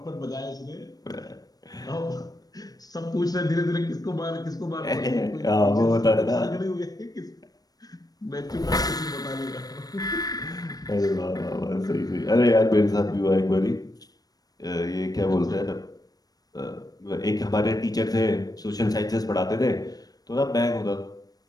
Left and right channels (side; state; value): right; late; 0.19 ms